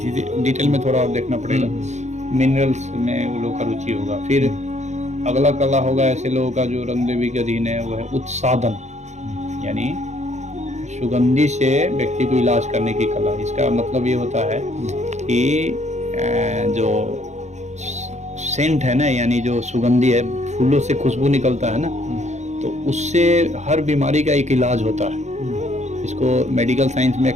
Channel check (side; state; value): left; late; 0.33 ms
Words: डिटेल में थोड़ा और देखना पड़ेगा। मिनरल्स में वो लोग का रुचि होगा। फिर अगला कला होगा ऐसे लोगों का जो रंग देवी के अधीन है, वो है उत्सादन, यानी सुगंधी से व्यक्ति को इलाज करने की कला। इसका मतलब ये होता है कि जो सेंट है ना, यानी जो सुगंधी है, फूलों से खुशबू निकलता है ना, तो उससे हर बीमारी का एक इलाज होता है। इसको मेडिकल साइंस में